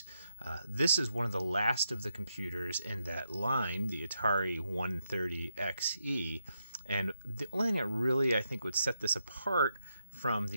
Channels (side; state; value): both; inverted; correlation -0.82